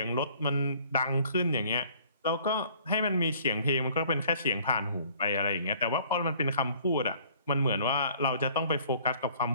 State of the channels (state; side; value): inverted; both; correlation -0.56